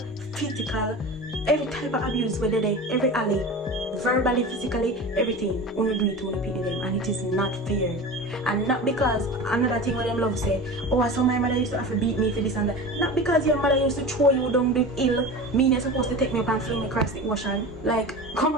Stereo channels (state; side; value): normal; both; correlation 0.31